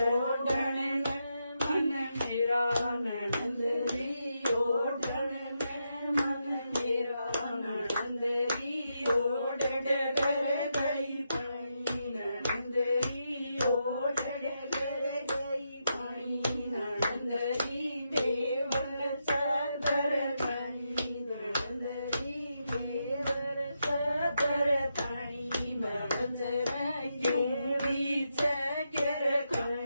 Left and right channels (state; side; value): inverted; both; correlation -0.83